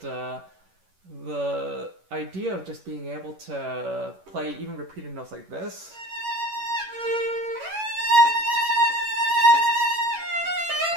the idea of just being able to play even repeated notes like this,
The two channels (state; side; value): late; left; 11 ms